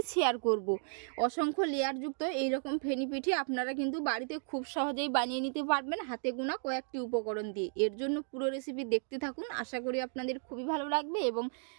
শেয়ার করব। অসংখ্য লেয়ারযুক্ত এই রকম ফেনি পিঠে আপনারা কিন্তু বাড়িতে খুব সহজেই বানিয়ে নিতে পারবেন হাতে গোনা কয়েকটি উপকরণ দিয়ে। এর জন্য পুরো রেসিপি দেখতে থাকুন, আশা করি আপনাদের খুবই ভালো লাগবে এবং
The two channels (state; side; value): silent; left; 55 dB below the other